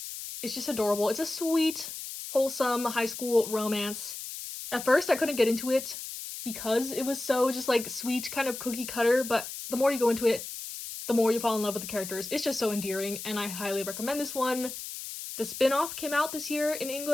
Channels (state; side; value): noise; left; hiss, 9 dB below the sound